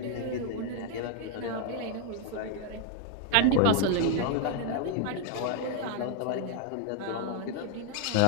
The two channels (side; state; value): both; different; correlation 0.00